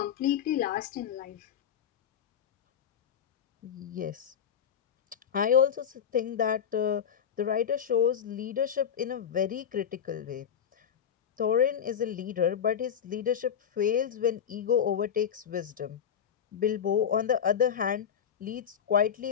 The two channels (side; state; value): right; quieter; 8.3 dB